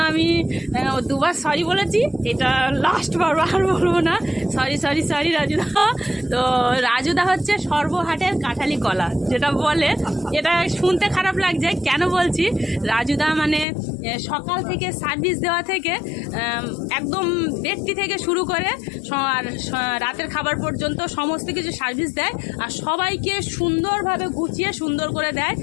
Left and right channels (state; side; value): drops out; right; at 13.7 s